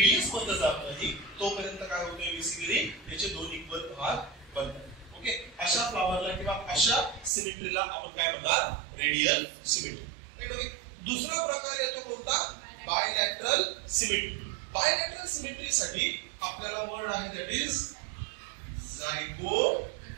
मध्ये जात नाही, तोपर्यंत काय होतंय? बेसिकली त्याचे 2 इक्वल भाग बनतात. ओके, अशा फ्लावरला किंवा अशा सिमेट्रीला आपण काय म्हणणार? Radial symmetry. राईट. ओके, दुसरा प्रकार येतो कोणता? Bilateral symmetry. बायलॅटरल सिमेट्रीसाठी आपल्याला वर्ड आहे, दॅट इज झायगोमॉर्फिक.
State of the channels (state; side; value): drops out; left; at 7.3 s